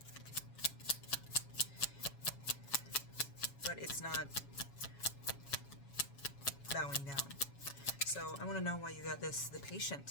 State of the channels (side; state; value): right; late; 7.2 ms